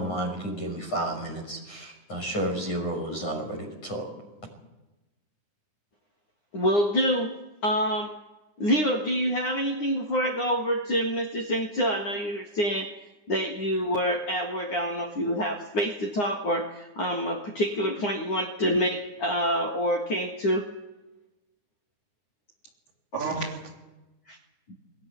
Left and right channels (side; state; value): right; late; 9.8 ms